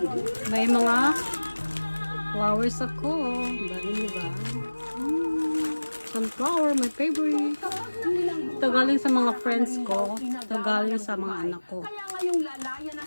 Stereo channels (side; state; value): both; inverted; correlation -1.00